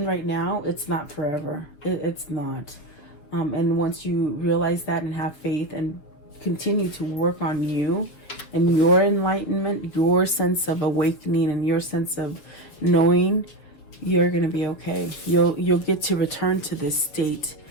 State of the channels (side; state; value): right; late; 7.2 ms